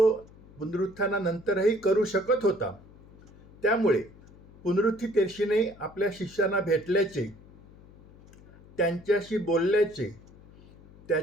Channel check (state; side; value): noise; left; hum, 23 dB below the sound